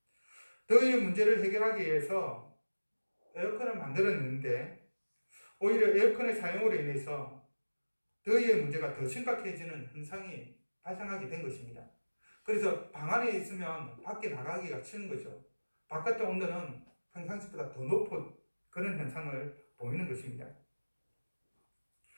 더위의 문제를 해결하기 위해서 에어컨을 만들었는데 오히려 에어컨의 사용으로 인해서 더위의 문제가 더 심각해지는 현상이 발생하게 된 것입니다. 그래서 방 안에 있으면 밖에 나가기가 싫은 거죠. 바깥의 온도는 평상시보다 더 높은 그런 현상을 보이는 것입니다.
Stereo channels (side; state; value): both; inverted; correlation -1.00